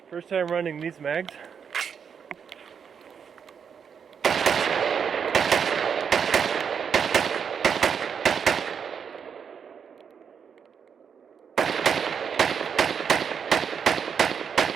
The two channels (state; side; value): quieter; left; 7.0 dB